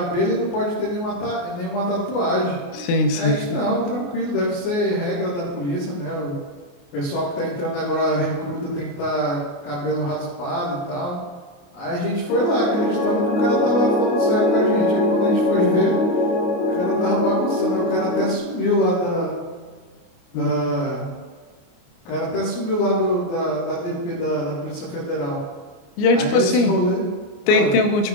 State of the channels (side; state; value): right; late; 29 ms